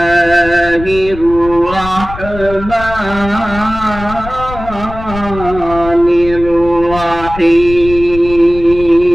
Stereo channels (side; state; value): left; noise; rumble, 12 dB below the sound